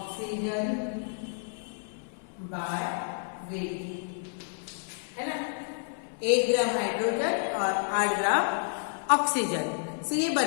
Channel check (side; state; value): right; silent; 58 dB below the other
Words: by weight, है ना। 1 ग्राम हाइड्रोजन और 8 ग्राम ऑक्सीजन से ये